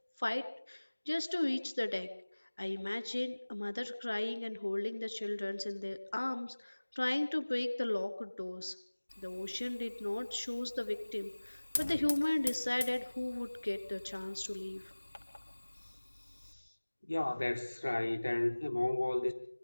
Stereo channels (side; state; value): both; inverted; correlation -1.00